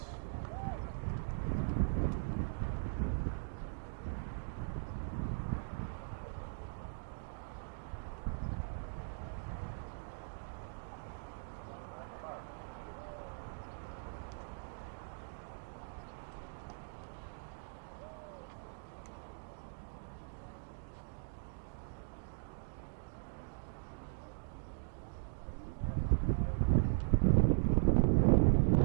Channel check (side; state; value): left; silent; digital silence